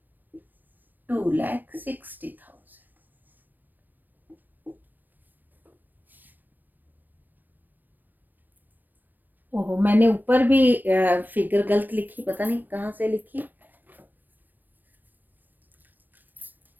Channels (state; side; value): late; left; 0.090 ms